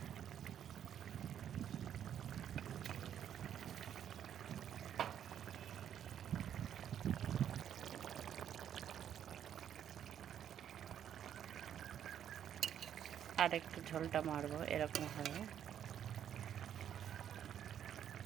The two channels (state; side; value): quieter; left; 9.6 dB